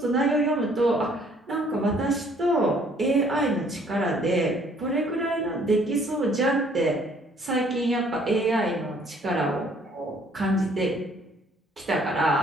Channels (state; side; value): normal; both; correlation 0.61